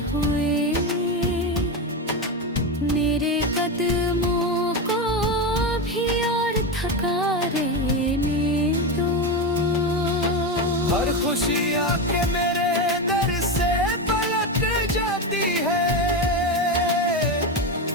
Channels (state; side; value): normal; both; correlation 0.15